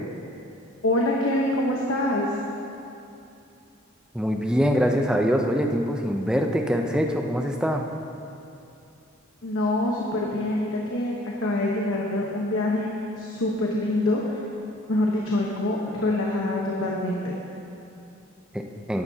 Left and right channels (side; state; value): both; normal; correlation 0.60